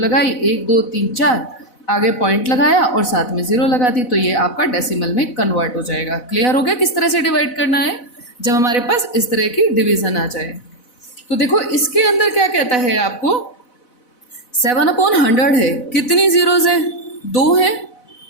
1, 2, 3, 4, आगे पॉइंट लगाया और साथ में 0 लगा दी, तो ये आपका डेसिमल में कन्वर्ट हो जाएगा। क्लियर हो गया किस तरह से डिवाइड करना है जब हमारे पास इस तरह की डिवीज़न आ जाए? तो देखो इसके अंदर क्या कहता है आपको, 7/100 है, कितनी ज़ीरोज़ हैं? 2 हैं,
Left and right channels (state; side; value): late; right; 4.0 ms